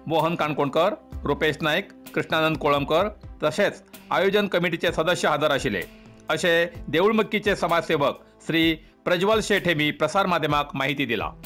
मोहन काणकोणकर, रुपेश नाईक, कृष्णानंद कोळंबकर तसेच आयोजन कमिटीचे सदस्य हजर आशिल्ले असे देऊळमक्कीचे समाजसेवक श्री प्रज्वल शेठ हेमी प्रसार माध्यमाक माहिती दिला.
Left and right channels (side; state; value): both; identical; correlation 1.00